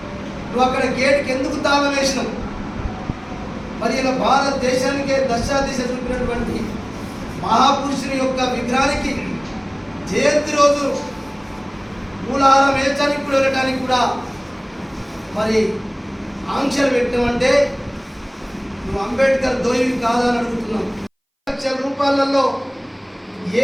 నువ్వు అక్కడ గేట్కి ఎందుకు తాళం వేసినావు? మరి ఇలా భారతదేశానికే దశాదిశ చూపినటువంటి మహాపురుషుని యొక్క విగ్రహానికి జయంతి రోజు మూలహారం వేయడానికి కూడా వెళ్ళడానికి కూడా మరి ఆంక్షలు పెట్టినామంటే నువ్వు అంబేద్కర్ దోయివి కాదని అడుగుతున్నావు. 2 లక్షల రూపాయలలో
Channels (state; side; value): identical; both; correlation 1.00